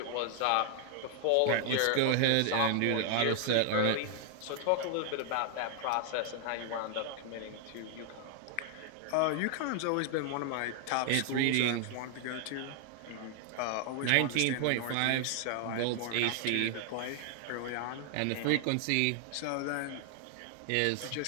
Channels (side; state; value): both; different; correlation 0.00